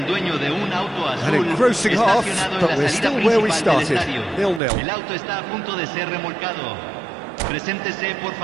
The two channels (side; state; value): left; drops out; at 4.6 s